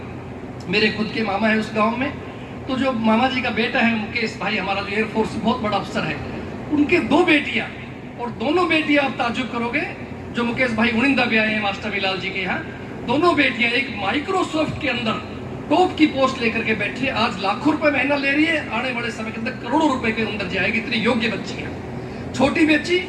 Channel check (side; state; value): both; identical; correlation 1.00